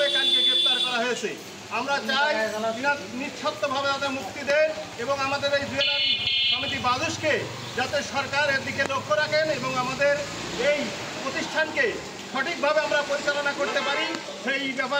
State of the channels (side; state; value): both; identical; correlation 1.00